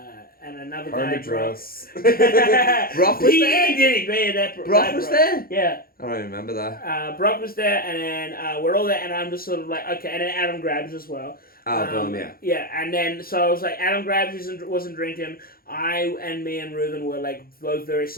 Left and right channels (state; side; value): late; right; 0.43 ms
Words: another guy. Brock was there? He did. Brock was there? Yeah. I don't remember that. Brock was there, and then we're all there, and I'm just sort of like, okay, and then Adam grabs as well. Yeah. Yeah, and then, so I was like, Adam Grabs wasn't drinking. Me and Reuven were like both very